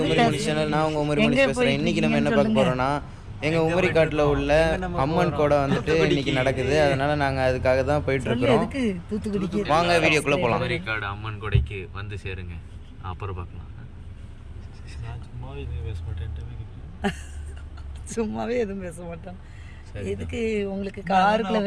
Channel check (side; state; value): both; identical; correlation 1.00